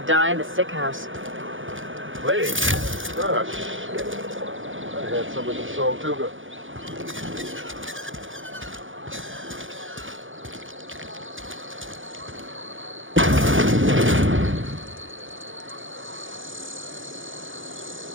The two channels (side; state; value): left; late; 0.57 ms